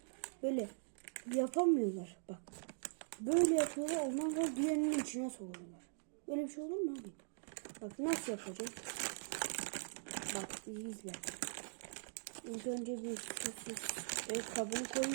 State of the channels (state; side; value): silent; left; digital silence